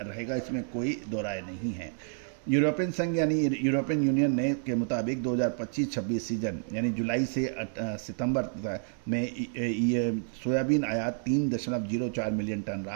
रहेगा, इसमें कोई दो राय नहीं है। यूरोपियन संघ यानी यूरोपियन यूनियन ने के मुताबिक 2025-26 सीजन यानी जुलाई से सितंबर में ये सोयाबीन आयात 3.04 मिलियन टन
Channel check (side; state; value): left; silent; digital silence